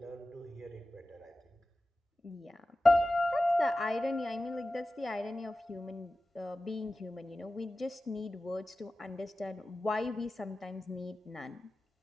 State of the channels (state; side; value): normal; both; correlation 0.95